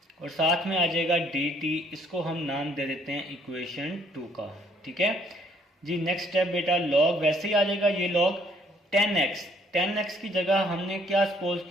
और साथ में आ जाएगा डी टी, इसको हम नाम दे देते हैं इक्वेशन 2 का। ठीक है जी, नेक्स्ट स्टेप बेटा लॉग वैसे ही आ जाएगा, ये लॉग 10x, 10x की जगह हमने क्या सपोज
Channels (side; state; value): both; normal; correlation 0.64